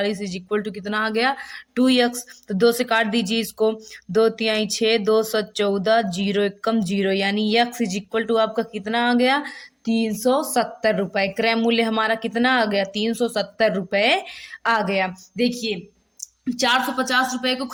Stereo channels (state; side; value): identical; both; correlation 1.00